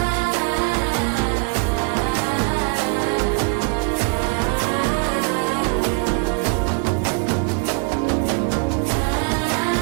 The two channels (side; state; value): left; quieter; 32.5 dB